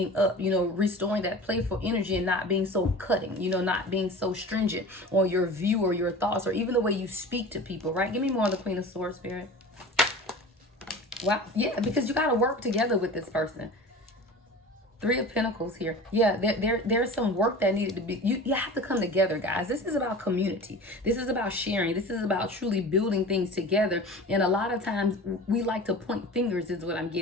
up, restoring that playful energy and not being so cutting, not being so stringent on your view or your thoughts or even the way you speak to people, right? Give me more of the Queen of Swords, Spirit. Wow. Yeah, because you got to work together with this person. Three of Pentacles here. Yeah, there's some work that needed to be, you have to come together, guys. This is about community. This is about sharing. This is about truly building things together. And a lot of times we like to point fingers is what I'm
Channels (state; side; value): normal; both; correlation 0.37